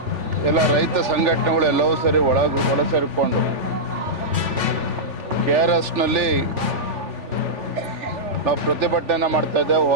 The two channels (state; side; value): late; left; 3.4 ms